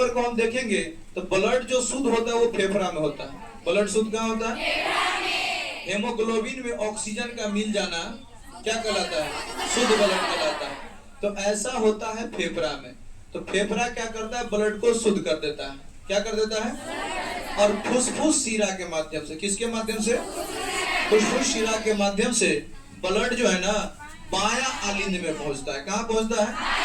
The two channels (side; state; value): both; identical; correlation 1.00